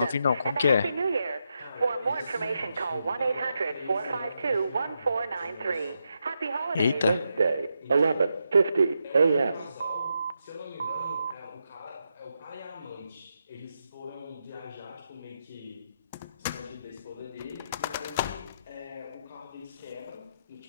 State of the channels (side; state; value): both; inverted; correlation -0.84